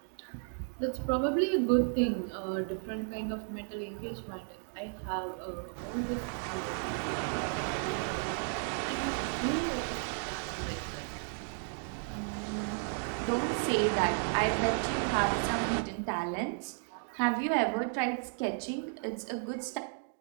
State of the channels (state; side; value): silent; left; 55 dB below the other